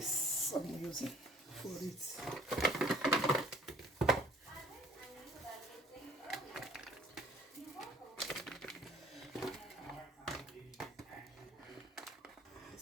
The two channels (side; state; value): both; normal; correlation 0.54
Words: I'm using for it. So